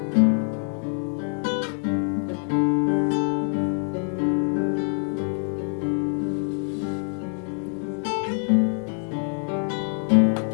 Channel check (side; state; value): right; silent; 56 dB below the other